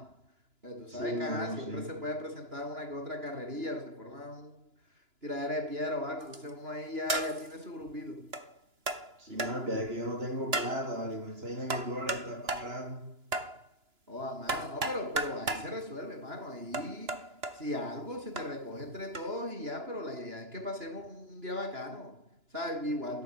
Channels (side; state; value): left; late; 2.9 ms